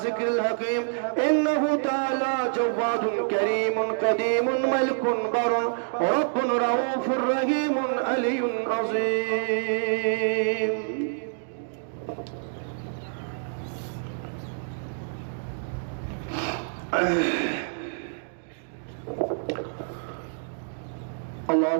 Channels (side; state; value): left; silent; digital silence